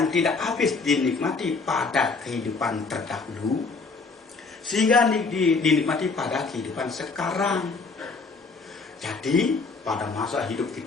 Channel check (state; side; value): quieter; right; 4.2 dB